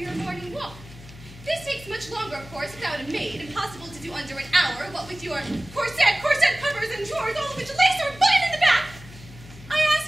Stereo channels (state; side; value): noise; left; hum, 18 dB below the sound